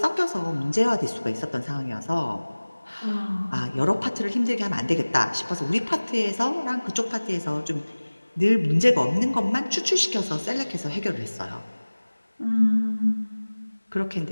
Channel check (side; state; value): both; inverted; correlation -1.00